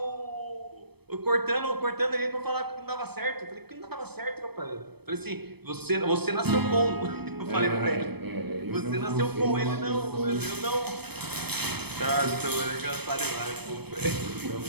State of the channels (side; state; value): left; late; 0.97 ms